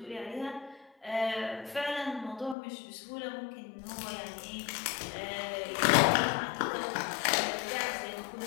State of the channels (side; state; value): right; drops out; at 2.6 s